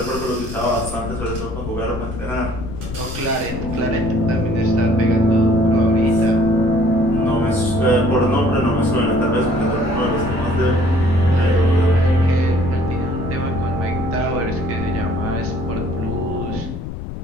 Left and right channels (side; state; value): left; noise; rumble, 8 dB below the sound